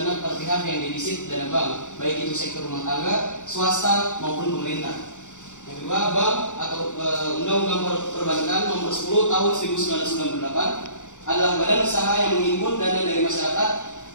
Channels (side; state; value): right; late; 0.85 ms